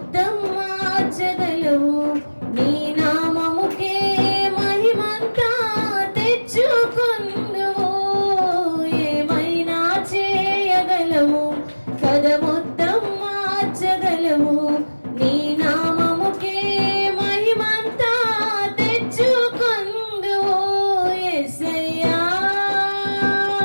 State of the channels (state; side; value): inverted; both; correlation -1.00